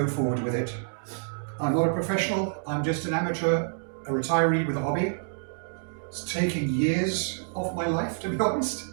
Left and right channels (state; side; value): silent; left; digital silence